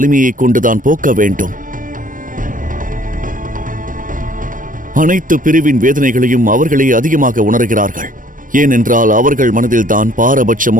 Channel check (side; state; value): left; late; 0.39 ms